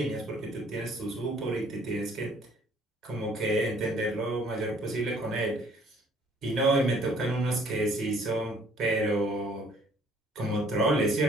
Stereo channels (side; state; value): both; normal; correlation 0.60